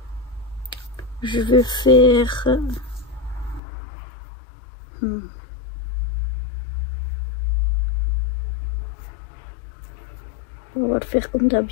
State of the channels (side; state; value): right; drops out; at 3.6 s